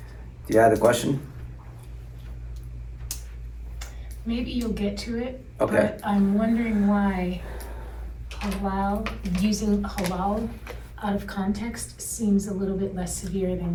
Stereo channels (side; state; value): both; identical; correlation 1.00